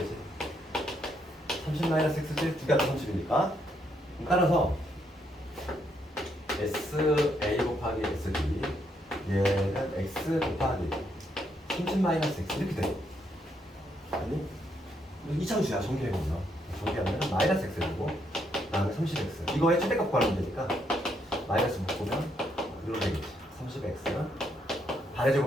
30-X지? 두 개가 30이니까. 따라서 SA 곱하기 SB 얘는 X 곱하기 30-X 이렇게 돼. 아니? 이차함수야. 전개해보면 전개하면 마이너스 X 되고 다음에 30X 이거의 최대값 구하면 되니까 마이너스 묶으면 이렇게 되겠지. 30X는 반의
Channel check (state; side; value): normal; both; correlation 0.75